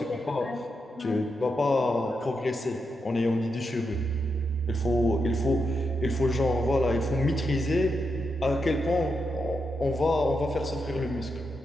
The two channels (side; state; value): both; normal; correlation 0.84